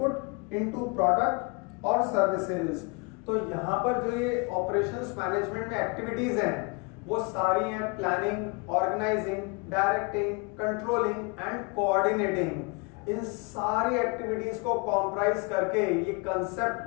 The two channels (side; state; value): right; quieter; 30.9 dB